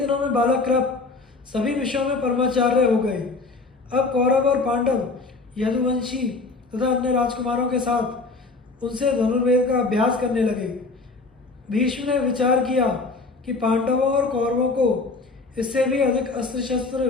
में बालक कृप सभी विषयों में परमाचार्य हो गए। अब कौरव और पांडव यदुवंशी तथा अन्य राजकुमारों के साथ उनसे धनुर्वेद का अभ्यास करने लगे। भीष्म ने विचार किया कि पांडवों और कौरवों को इससे भी अधिक अस्त्र शस्त्र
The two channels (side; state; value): right; quieter; 3.7 dB